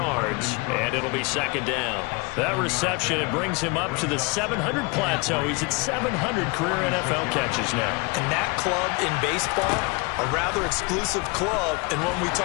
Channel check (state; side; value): quieter; right; 28.1 dB